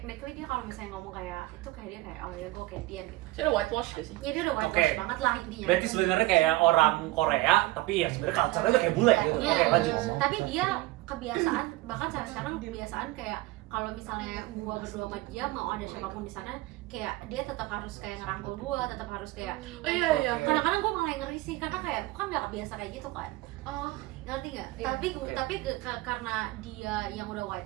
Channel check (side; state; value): left; quieter; 19.2 dB